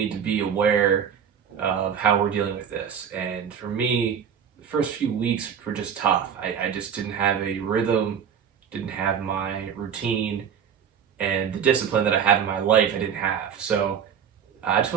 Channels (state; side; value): quieter; left; 7.8 dB